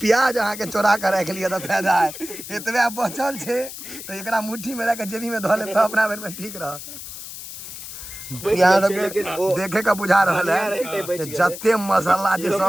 प्याज अहाँ के चोरा के रख लिया तो फायदा है। एतबे बचल छे तो एकरा मुट्ठी में रख के जेबी में धो ले तो अपना बेर में ठीक रह। यहाँ देखे का बुझा रहल है कि जते मसाला जे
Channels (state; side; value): noise; left; hiss, 11 dB below the sound